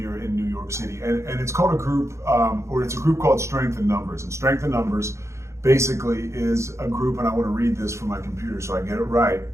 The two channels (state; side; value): late; left; 0.14 ms